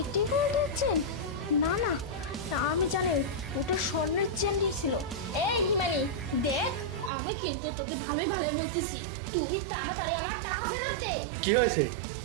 গোল্ডের চেন? না না না, আমি জানি ওটা স্বর্ণের চেনই ছিল। এই হিমানি দেখ, আমি কিন্তু তোকে ভালোই ভালোই বলতেছি, তুই তাড়াতাড়ি আমার টাকা ফেরত দে। কি হয়েছে?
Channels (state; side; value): drops out; left; at 7.1 s